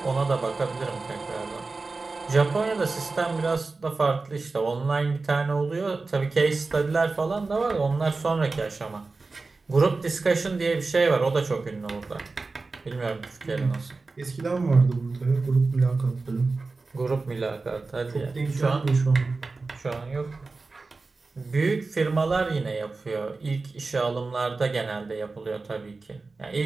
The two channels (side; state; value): left; quieter; 3.8 dB